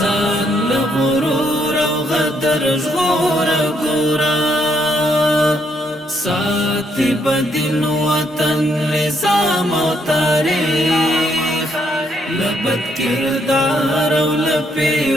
له غرور او غدر ژغور ګورا ساتي بدین وطن نظام او تاریخ لبد کردار او لپی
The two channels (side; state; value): both; normal; correlation 0.73